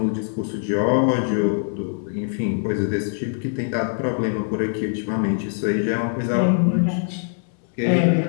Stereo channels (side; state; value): right; silent; digital silence